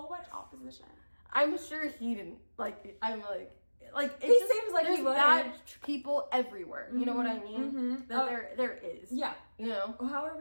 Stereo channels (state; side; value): inverted; both; correlation -1.00